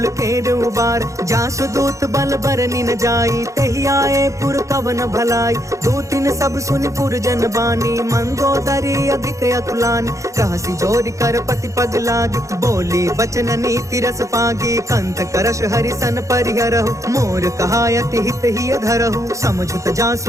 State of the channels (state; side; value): late; left; 0.15 ms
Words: केर उबार। जासु दूत बल बरनि न जाई, तेहि आए पुर कवन भलाई। दूतिन सब सुनि पुर जन बानी, मंदोदरी अधिक अतुलानी। रहसि जोरि कर पति पग लागी, बोली बचन नीति रस पागी। कंत करश हरिसन परिहरहु, मोर कहायति हित ही धरहु। समझुत